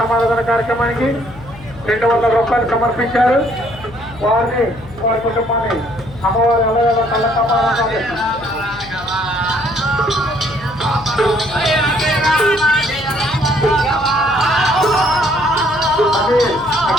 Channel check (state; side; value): noise; left; hum, 17 dB below the sound